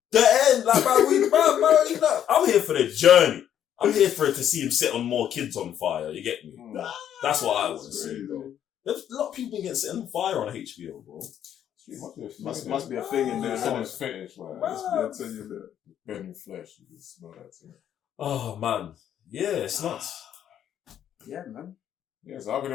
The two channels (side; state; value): right; quieter; 10.0 dB